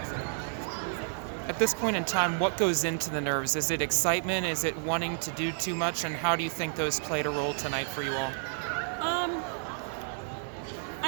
on. At this point in time, what goes into the nerves? Is it excitement? Is it wanting to do too much? And how do you think those played a role tonight for you all?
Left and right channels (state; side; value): silent; left; 57 dB below the other